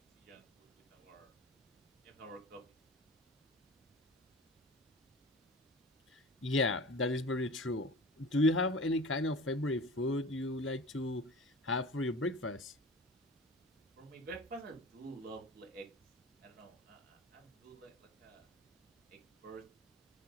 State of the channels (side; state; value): both; normal; correlation 0.37